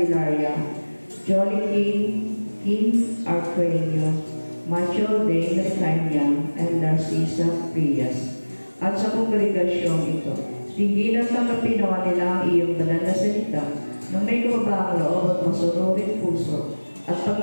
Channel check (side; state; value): both; inverted; correlation -1.00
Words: Jolly King Arquenio, Macho Day Nascanyang, and Narcisa Frias. At sa kongregasyong ito, tinggilan tanggapin naman nila ang iyong banal na salita ng may kababaang loob at masunurin puso at